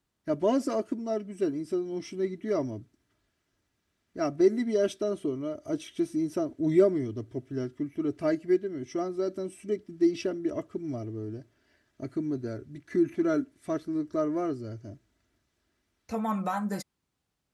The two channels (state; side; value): identical; both; correlation 1.00